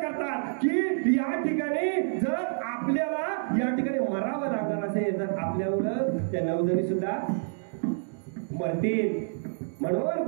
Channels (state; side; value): silent; left; digital silence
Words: करतात की या ठिकाणी जर आपल्याला या ठिकाणी मरावं लागणार असेल तर आपल्यावर त्या 9 जणी सुद्धा मरतील. म्हणून